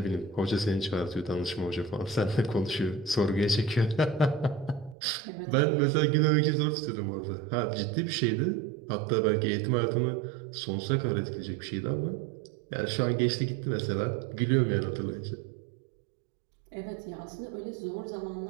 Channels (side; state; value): left; drops out; at 5.0 s